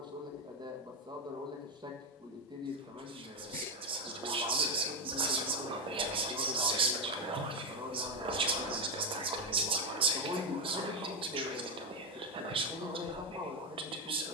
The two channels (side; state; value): both; normal; correlation 0.09